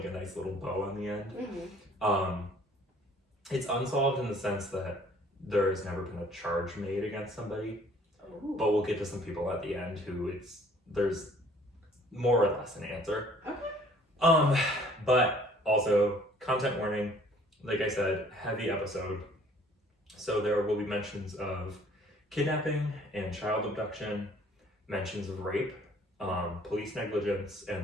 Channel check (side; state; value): both; normal; correlation 0.56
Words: a nice little bow on the end. It's unsolved in the sense that there has never been a charge made against somebody. Ooh. But we'll get to some people at the end who there's more or less an answer. Okay. But also content warning, like I said, heavy episode. So there will be mentions of kidnapping and child abduction, mentions of rape, police negligence,